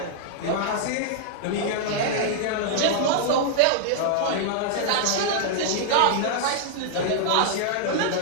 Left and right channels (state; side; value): different; both; correlation -0.01